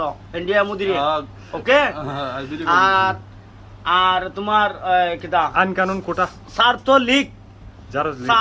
ইন্ডিয়া মুদিরে, ওকে। আর তোমার কিতা আইন কানুন কোটা ছাত্রলীগ জারজ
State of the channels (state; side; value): identical; both; correlation 1.00